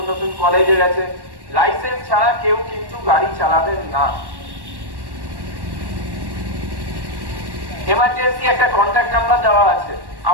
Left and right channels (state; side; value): late; left; 1.1 ms